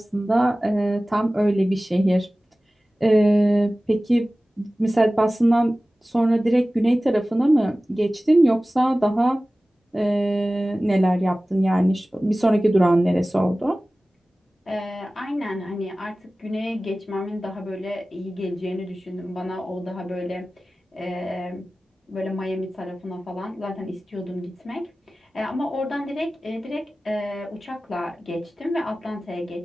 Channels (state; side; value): normal; both; correlation 0.97